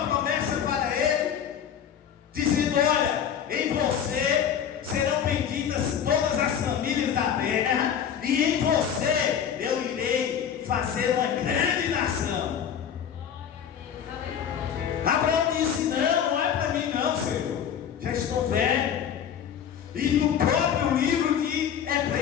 promessa para ele, dizendo: olha, em você serão benditas todas as famílias da terra, e em você eu irei fazer uma grande nação. Glória a Deus. Aleluia. Abraão disse: não é para mim não, Senhor, já estou velho. E no próprio livro de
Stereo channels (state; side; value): quieter; right; 8.6 dB